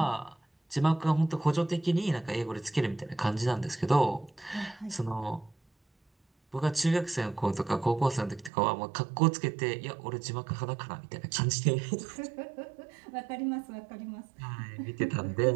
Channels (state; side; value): drops out; left; at 8.5 s